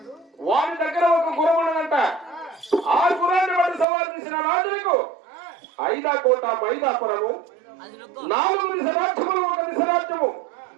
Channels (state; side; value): drops out; left; at 3.9 s